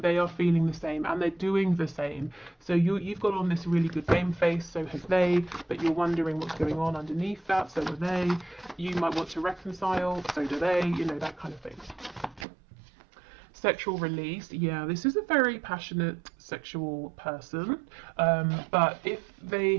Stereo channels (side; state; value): left; drops out; at 12.5 s